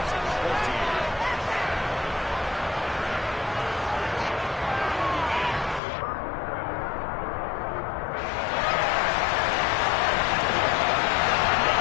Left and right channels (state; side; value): drops out; right; at 5.8 s